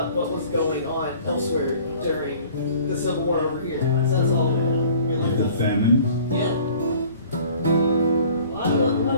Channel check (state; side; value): inverted; both; correlation -0.50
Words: what was going on elsewhere during the Civil War over here. So that's all Like the famine. Yeah. What